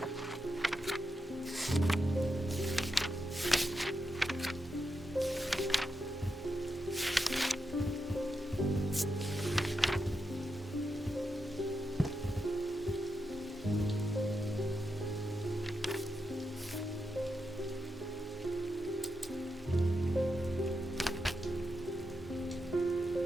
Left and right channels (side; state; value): both; normal; correlation 0.86